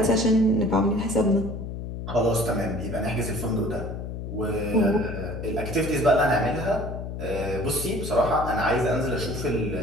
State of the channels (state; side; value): noise; left; hum, 7 dB below the sound